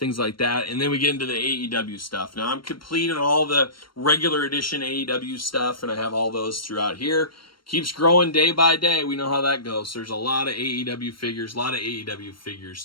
like that. And then we get into the AEW stuff. Now, I'm complete on all the regular edition AEW stuff, and I have all those throughout here. Keeps growing day by day. We know how that goes. So there's a lot of AEW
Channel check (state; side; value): late; right; 0.73 ms